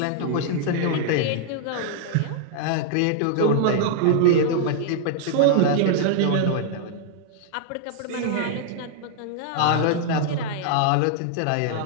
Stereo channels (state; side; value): different; both; correlation 0.00